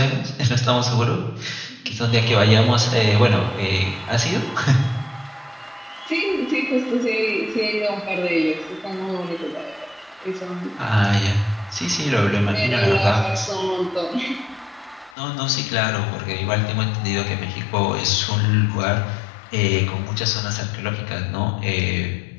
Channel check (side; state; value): right; drops out; at 15.2 s